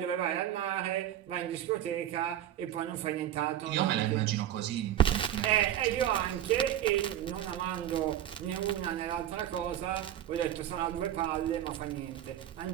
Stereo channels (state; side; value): quieter; left; 11.5 dB